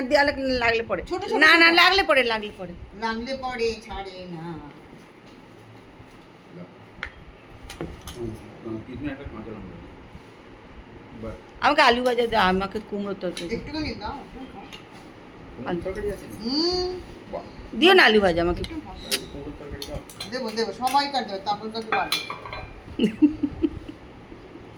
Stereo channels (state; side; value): identical; both; correlation 1.00